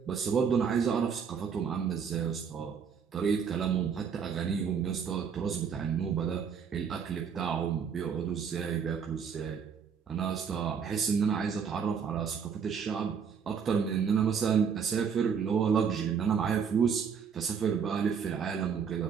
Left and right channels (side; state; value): left; quieter; 6.8 dB